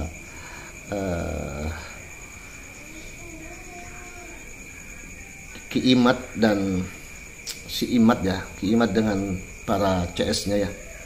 Ki Imad dan si Imad Ki Imad dengan para CS-nya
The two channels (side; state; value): both; identical; correlation 1.00